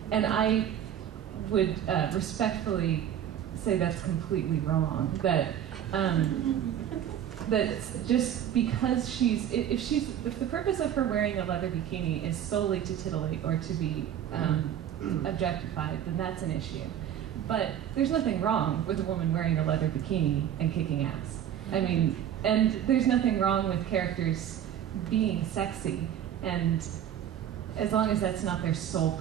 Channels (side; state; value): left; quieter; 10.1 dB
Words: And I would respectfully say that's completely wrong. That just because if the purpose of her wearing a leather bikini is solely to titillate or to be objectified, then that's an issue. But there's nothing wrong with a woman wearing a leather bikini and kicking ass. I mean, and there's nothing wrong with characters being sexy, and as long as that's not their sole